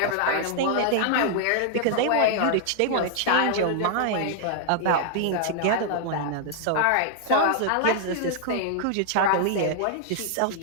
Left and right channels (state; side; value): different; both; correlation -0.01